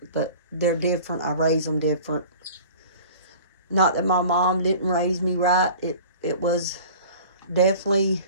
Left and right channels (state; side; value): inverted; both; correlation -0.42